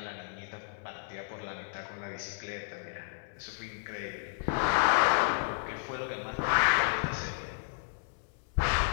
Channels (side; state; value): right; silent; 56 dB below the other